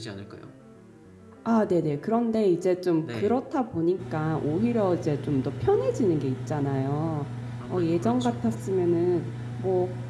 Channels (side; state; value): both; identical; correlation 1.00